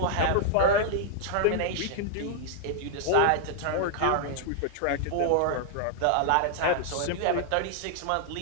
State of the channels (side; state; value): both; different; correlation -0.01